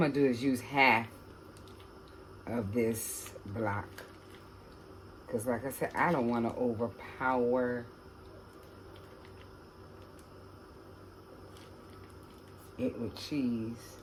to do is use half of this block. Because like I said, I don't want to overpower it with cheese.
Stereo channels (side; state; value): both; identical; correlation 1.00